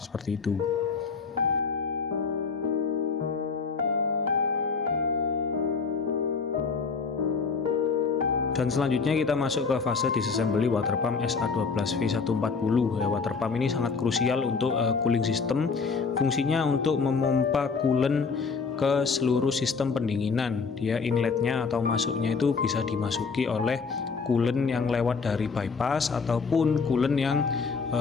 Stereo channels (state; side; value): quieter; right; 5.0 dB